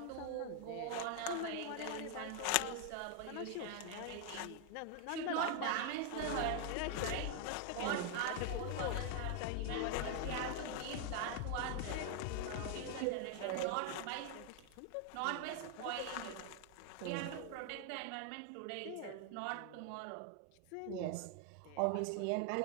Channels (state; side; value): different; both; correlation 0.00